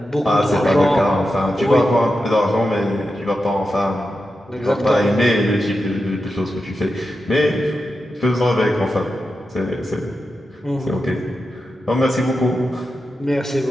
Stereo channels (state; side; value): normal; both; correlation 0.89